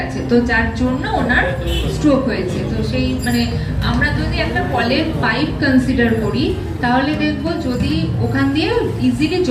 তো যার জন্য ওনার স্ট্রোক হয়েছে। তো সেই মানে আমরা যদি একটা কলের পাইপ কনসিডার করি তাহলে দেখবো যদি ওখান দিয়ে ইজিলি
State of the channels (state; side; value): identical; both; correlation 1.00